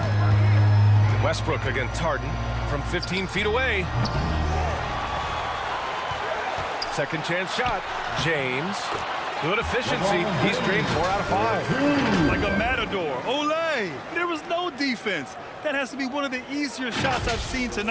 Westbrook against Harden from 15 feet away. Second chance shot. James. Good efficiency. He's drained 4 out of 5. Like a matador. Olay! There was no defense. That has to be one of the easier shots I've seen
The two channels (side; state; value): both; identical; correlation 1.00